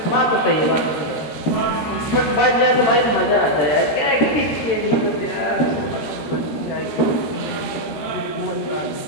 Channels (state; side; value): late; right; 13 ms